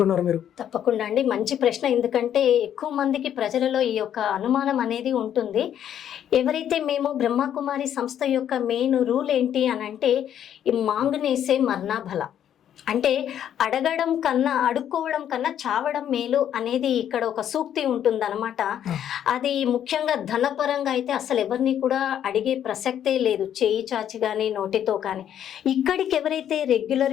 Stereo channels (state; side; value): quieter; right; 10.0 dB